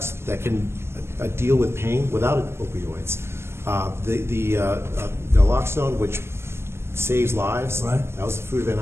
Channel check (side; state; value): left; late; 0.12 ms